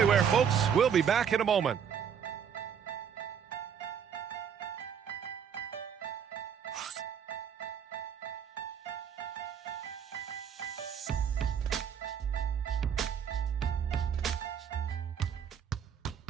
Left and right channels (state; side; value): quieter; left; 7.8 dB